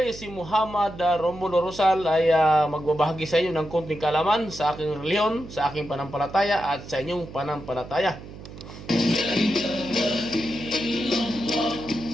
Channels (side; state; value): right; noise; hum, 15 dB below the sound